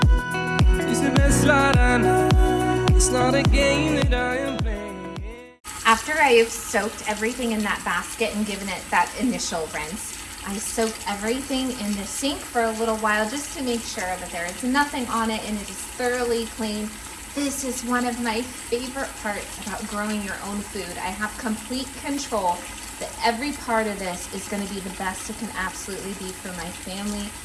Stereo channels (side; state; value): both; identical; correlation 1.00